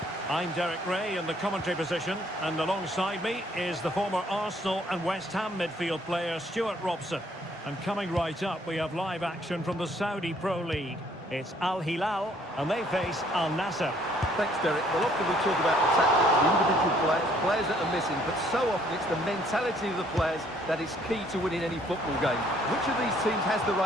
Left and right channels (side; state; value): both; normal; correlation 0.63